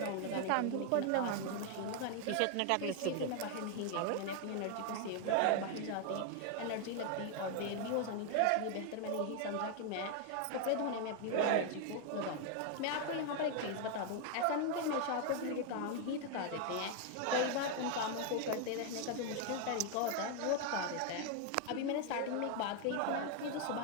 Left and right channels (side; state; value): both; different; correlation 0.00